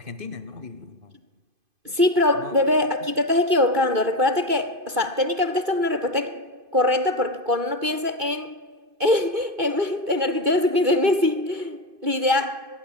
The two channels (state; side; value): late; left; 2.5 ms